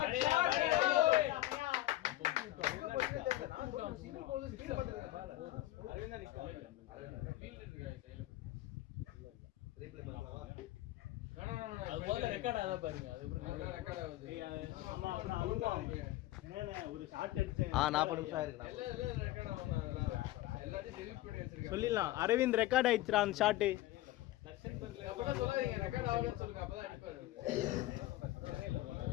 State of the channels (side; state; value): right; quieter; 16.0 dB